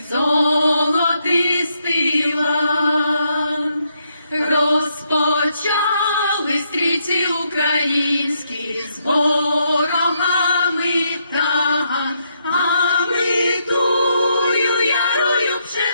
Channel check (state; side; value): inverted; both; correlation -0.77